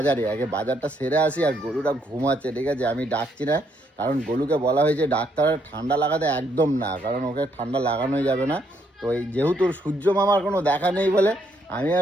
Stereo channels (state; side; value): normal; both; correlation 0.73